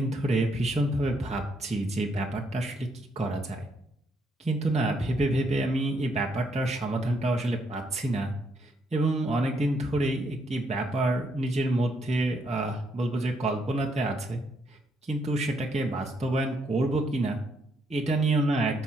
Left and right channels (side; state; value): both; normal; correlation 0.74